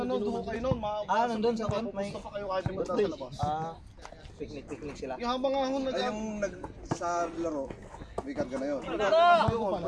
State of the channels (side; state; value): both; identical; correlation 1.00